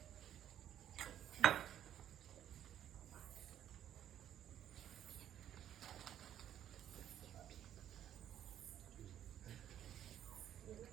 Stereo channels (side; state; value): left; quieter; 10.8 dB